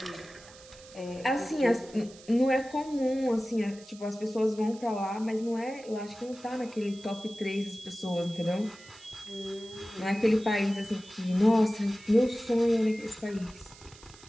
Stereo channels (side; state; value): right; noise; hiss, 21 dB below the sound